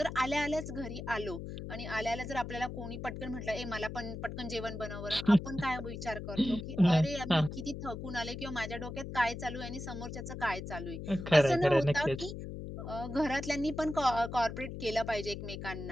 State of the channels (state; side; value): noise; left; hum, 8 dB below the sound